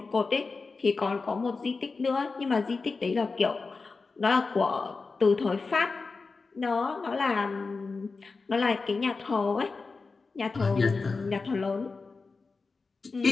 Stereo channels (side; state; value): right; quieter; 4.2 dB